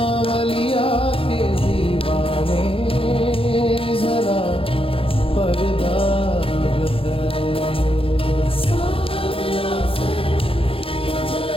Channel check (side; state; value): right; late; 0.27 ms